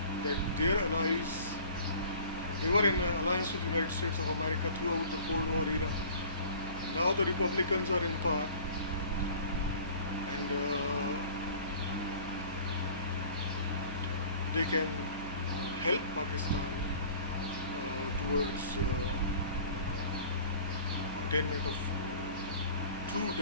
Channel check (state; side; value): inverted; both; correlation -0.46